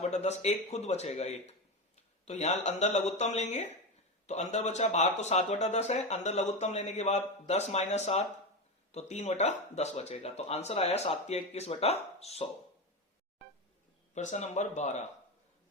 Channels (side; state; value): both; normal; correlation 0.17